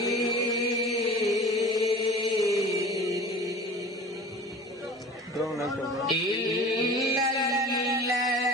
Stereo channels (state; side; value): normal; both; correlation 0.40